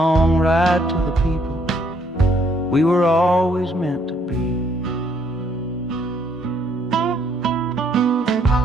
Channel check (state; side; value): normal; both; correlation 0.68